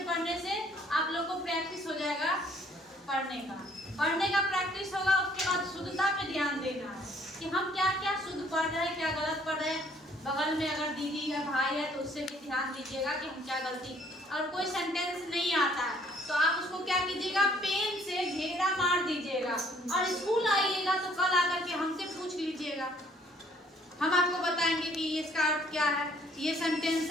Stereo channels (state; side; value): normal; both; correlation 0.62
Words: पढ़ने से आप लोगों को प्रैक्टिस हो जाएगा पढ़ने का प्रैक्टिस होगा उसके बाद शुद्धता पे ध्यान देना बगल में अगर दीदी या भाई है तो उससे भी ध्यान दीजिएगा कि हम क्या गलती। और कोई सेंटेंस नहीं आता है तो आप उसको क्या कीजिएगा, पेन से घेरा मार दीजिएगा और स्कूल आइएगा तो कल आकर के हमसे पूछ लीजिएगा। हम आपको बताएंगे कि इसका अर्थ क्या है। ये सेंटेंस